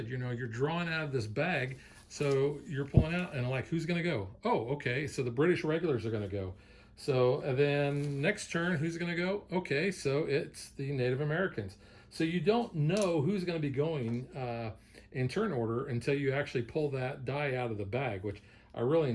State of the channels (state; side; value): identical; both; correlation 1.00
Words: you know, you're drawing out of this bag, so you're pulling out and like, who's going to go? Oh, okay, so the British regulars are going to go. So then next turn, who's going to go? Okay, so it's the Native Americans. So you don't know who's going to be going in turn order until you actually pull that die out of the bag, which I really